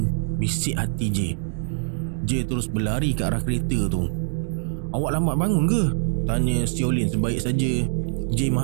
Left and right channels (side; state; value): left; silent; 63 dB below the other